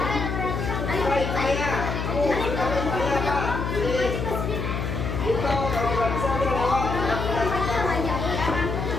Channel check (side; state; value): left; noise; hum, 3 dB below the sound